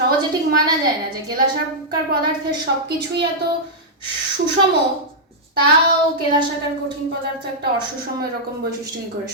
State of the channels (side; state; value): both; normal; correlation -0.09